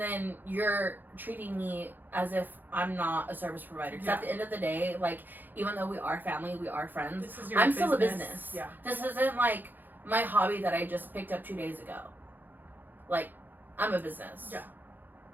you're treating me as if I'm not a service provider. Because at the end of the day, like, even though we are family, we are friends, I'm still a business. Yeah. This isn't, like, my hobby that I just picked up 2 days ago. Like, I'm a business. Yeah.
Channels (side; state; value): left; late; 0.088 ms